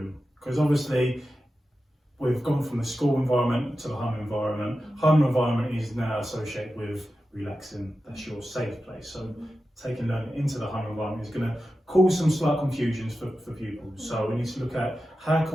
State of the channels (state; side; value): normal; both; correlation 0.92